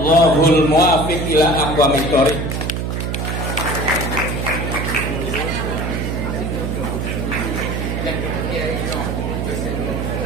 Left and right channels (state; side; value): noise; right; hum, 2 dB below the sound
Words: muwaffiq ila aqwamit thoriq.